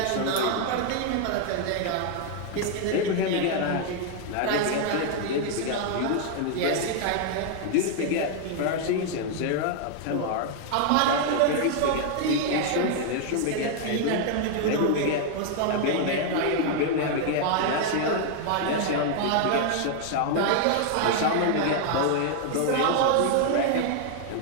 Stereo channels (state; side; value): different; both; correlation 0.00